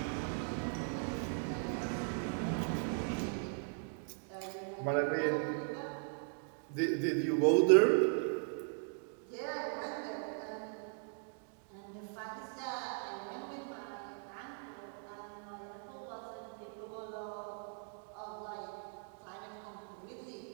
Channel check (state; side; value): silent; left; 52 dB below the other